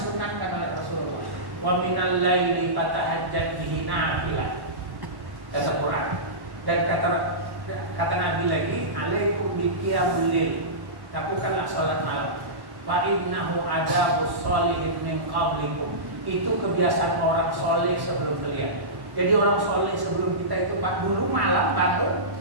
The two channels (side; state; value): left; late; 1.1 ms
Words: oleh Rasulullah. Wa minal laili fatahajjat bihi nafilah. Kata Quran. Dan kata Nabi lagi, alaikum biqiyamul lail. Lakukanlah sholat malam. Fa innahu adabus sholihin min qablikum. Itu kebiasaan orang soleh sebelum kalian. Jadi orang soleh sebelum kita itu Pak dulu malam bangun